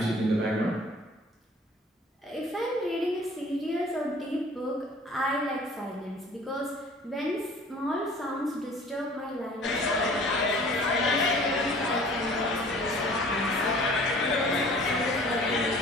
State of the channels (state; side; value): normal; both; correlation 0.50